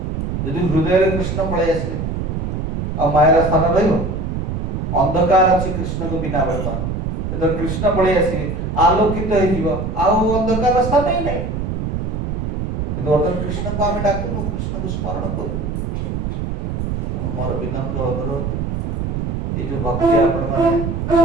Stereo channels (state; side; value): noise; right; rumble, 2 dB below the sound